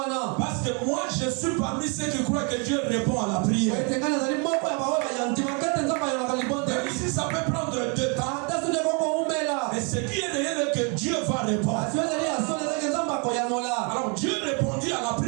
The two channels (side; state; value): left; quieter; 34.9 dB